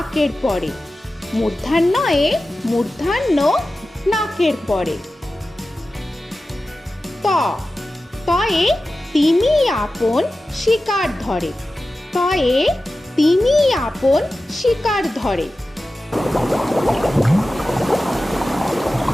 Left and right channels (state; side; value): normal; both; correlation 0.94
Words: পরে। মূর্ধন্যয়ে মূর্ধন্য নাকের পরে। ত, তয়ে তিমি আপন শিকার ধরে। তয়ে তিমি আপন শিকার ধরে।